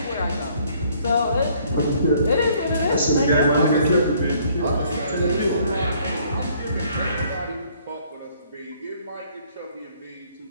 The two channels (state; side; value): inverted; both; correlation -0.62